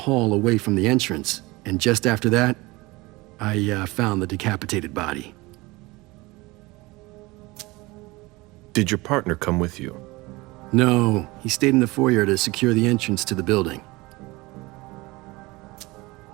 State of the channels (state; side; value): quieter; left; 22.4 dB